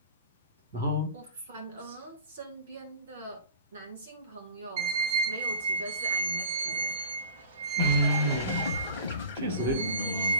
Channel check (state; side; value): inverted; both; correlation -0.42